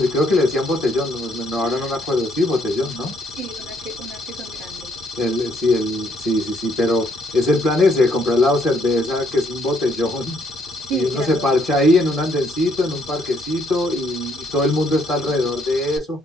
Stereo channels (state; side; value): normal; both; correlation 0.70